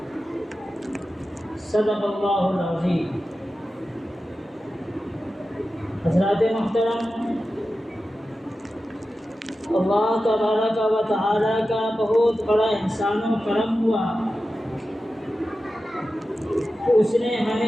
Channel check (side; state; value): both; normal; correlation 0.93